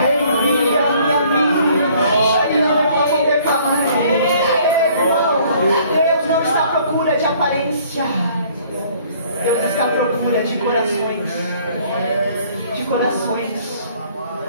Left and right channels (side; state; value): both; inverted; correlation -0.58